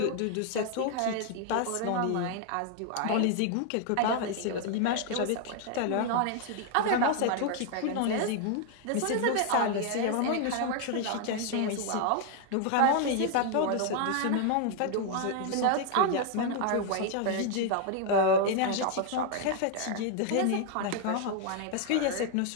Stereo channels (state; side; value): different; both; correlation 0.00